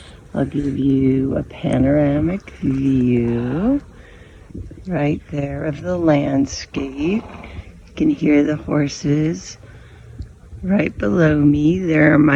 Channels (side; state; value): both; identical; correlation 1.00